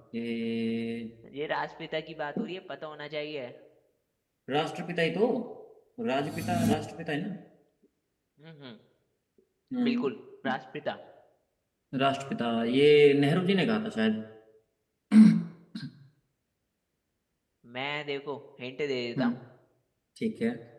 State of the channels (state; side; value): identical; both; correlation 1.00